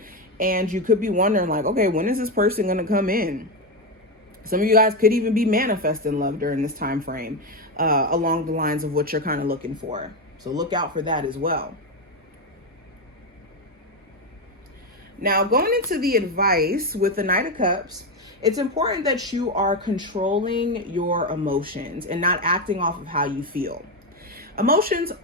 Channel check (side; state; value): both; normal; correlation 0.11